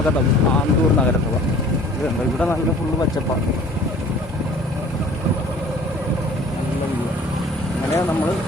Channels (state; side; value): normal; both; correlation 0.49